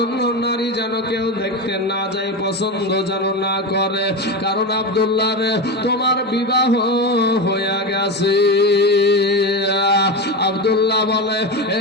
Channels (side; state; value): both; normal; correlation 0.19